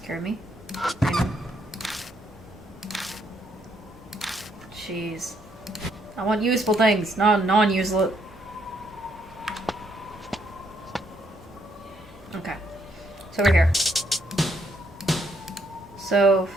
me. Jeez. I want useful things, not non-useless. Okay. It's over here. So...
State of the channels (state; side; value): normal; both; correlation 0.73